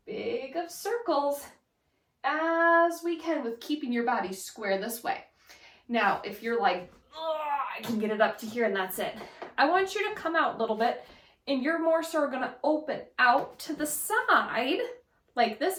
big of circles as we can with keeping your body square this way. Now, if you're like, I can get it up to here and that's it, I want you to come out a little bit, and you're more so going to open out to the side like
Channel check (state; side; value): identical; both; correlation 1.00